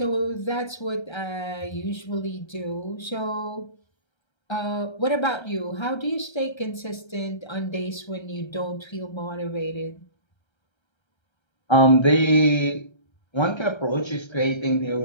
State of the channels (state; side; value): late; right; 1.3 ms